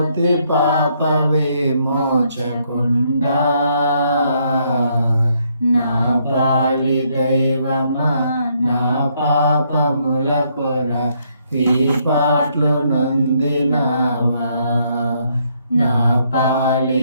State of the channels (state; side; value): inverted; both; correlation -0.72